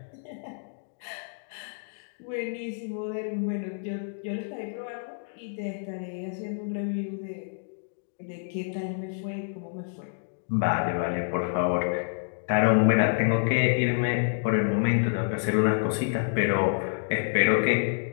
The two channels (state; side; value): silent; right; digital silence